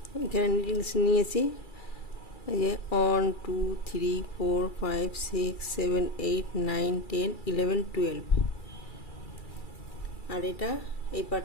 এখানে নিডলস নিয়েছি, এই যে 1 2 3 4 5 6 7 8 9 10 11 12 আর এটা এই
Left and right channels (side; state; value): right; late; 2.3 ms